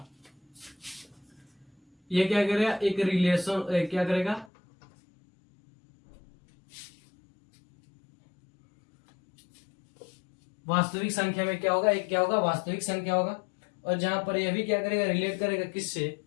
ये क्या करेगा, एक रिलेशन क्या करेगा, वास्तविक संख्या में क्या होगा, एक क्या होगा वास्तविक संख्या होगा, और जहां पर यह भी क्या करेगा, रिलेट करेगा किससे,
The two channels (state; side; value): drops out; right; at 4.5 s